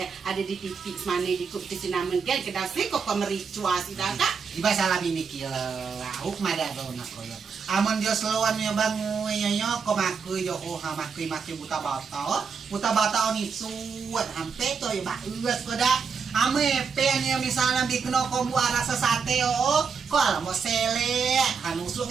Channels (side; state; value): left; quieter; 5.8 dB